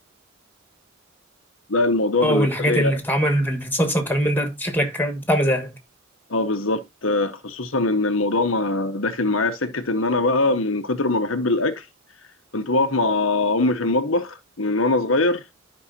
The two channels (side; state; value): both; normal; correlation 0.10